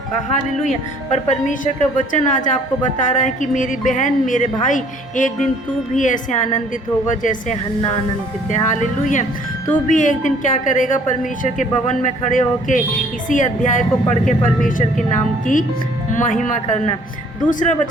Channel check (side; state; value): both; normal; correlation 0.58